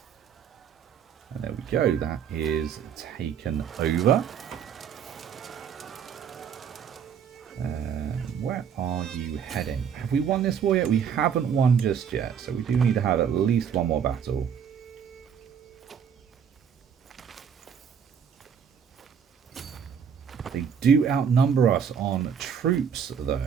And there we go, that is taken over. Where are you heading? Have we won this war yet? We haven't won just yet, so we do need to have at least one more battle. They do outnumber us on troops, though.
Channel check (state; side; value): quieter; left; 7.6 dB